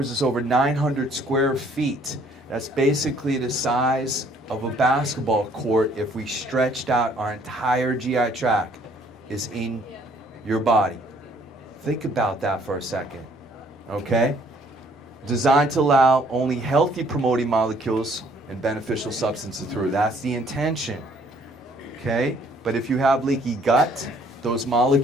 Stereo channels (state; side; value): normal; both; correlation 0.62